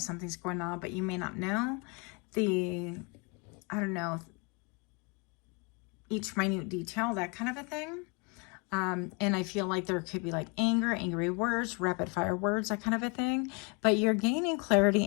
going on, but you may not know I don't know, each minute detail, that kind of a thing. And I feel like there could be like anger, angry words, rapid fire words, that kind of a thing. But you're gaining clarity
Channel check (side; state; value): right; quieter; 32.0 dB